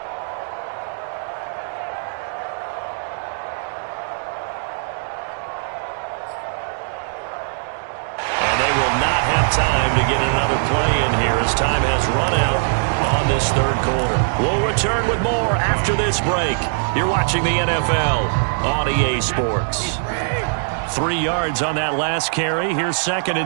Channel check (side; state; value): left; silent; digital silence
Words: Time to get another play in here as time has run out on this 3rd quarter. We'll return with more after this break. You're watching the NFL on EA Sports. 3 yards on that last carry. Here's 2nd